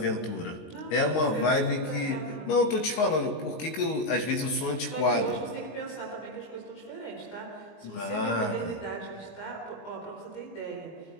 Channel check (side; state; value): right; late; 19 ms